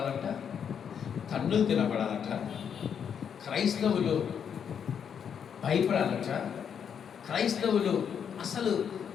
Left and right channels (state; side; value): quieter; right; 7.7 dB